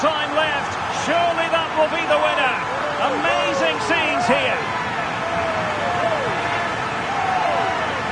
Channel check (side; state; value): both; identical; correlation 1.00